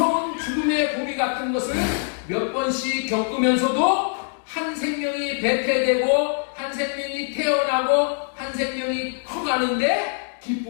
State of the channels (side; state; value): right; silent; 63 dB below the other